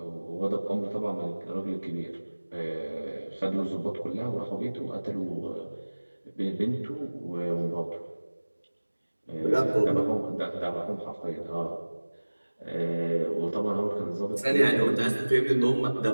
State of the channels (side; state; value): both; inverted; correlation -1.00